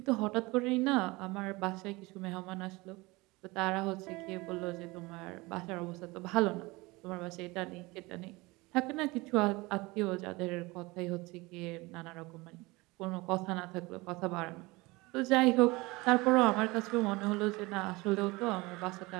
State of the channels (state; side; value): quieter; left; 23.1 dB